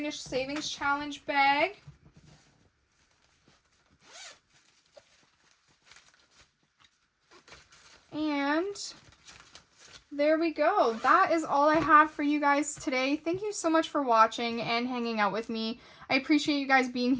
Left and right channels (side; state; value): both; identical; correlation 1.00